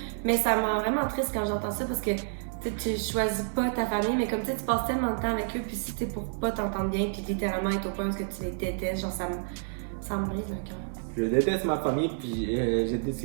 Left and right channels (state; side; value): silent; left; 58 dB below the other